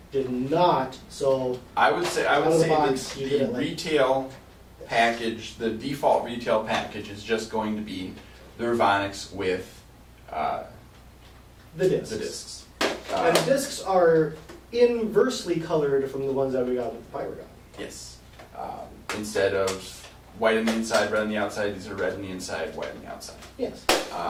did not. So I would say the like retail package, the default retail package, is just going to be the Revonix with the discs. The discs. And the discs are inversely colored from the ones that we got with the Pyragon. Yes. Instead of white on the inside, red on the outside. These are red on the inside, white on the outside. Yes.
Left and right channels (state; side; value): identical; both; correlation 1.00